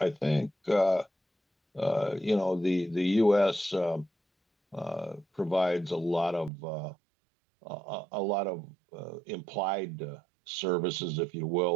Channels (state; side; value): drops out; left; at 6.5 s